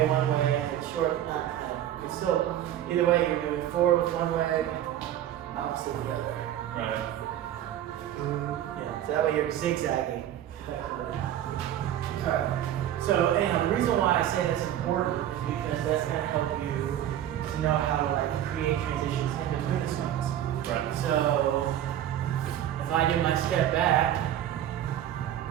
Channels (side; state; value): left; quieter; 11.6 dB